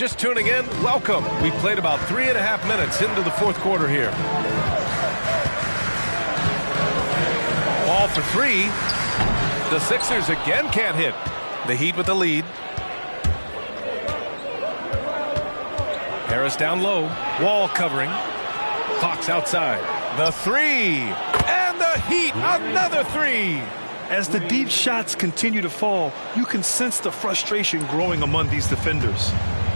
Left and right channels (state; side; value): inverted; both; correlation -1.00